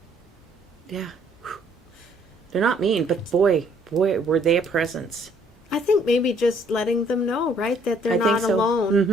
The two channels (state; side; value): normal; both; correlation 0.63